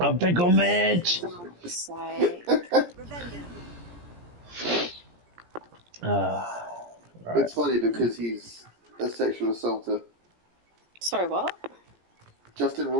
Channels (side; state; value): left; late; 17 ms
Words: pickle, Mitch. Sake. Right. It's funny because he's a sexual assaulter. Sorry, what? Justin